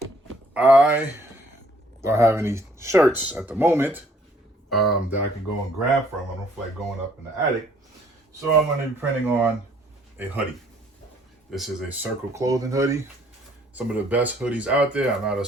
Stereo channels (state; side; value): normal; both; correlation 0.62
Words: I don't have any shirts at the moment that I can go and grab from. I don't feel like going up in the attic. So I'm gonna be printing on a hoodie. This is a Circle Clothing hoodie. Some of the best hoodies out there. I'm not a